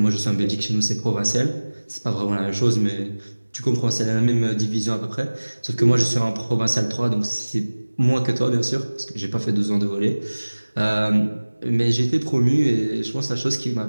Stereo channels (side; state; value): both; inverted; correlation -1.00